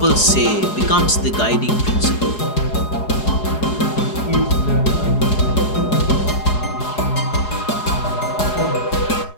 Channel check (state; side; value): late; right; 4.8 ms